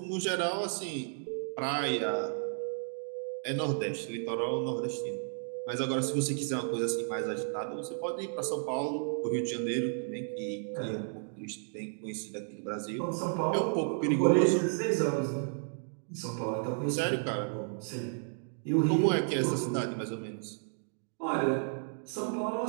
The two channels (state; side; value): silent; left; digital silence